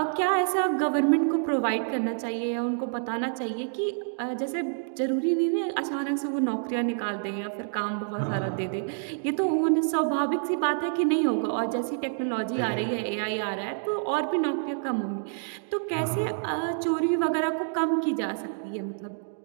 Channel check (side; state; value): left; silent; digital silence